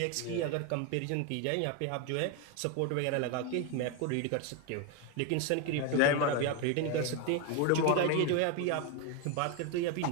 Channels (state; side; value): different; both; correlation 0.01